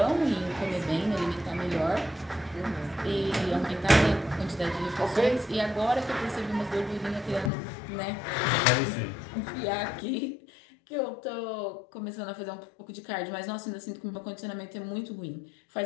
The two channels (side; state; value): right; drops out; at 7.5 s